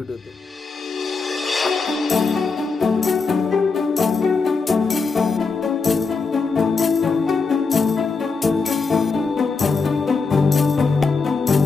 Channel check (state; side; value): quieter; right; 4.5 dB